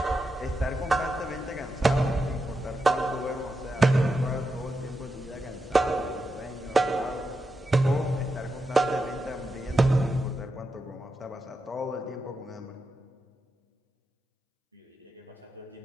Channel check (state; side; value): normal; both; correlation 0.87